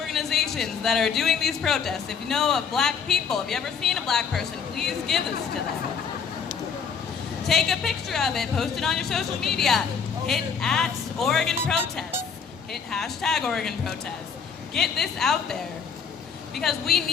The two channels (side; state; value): right; quieter; 6.3 dB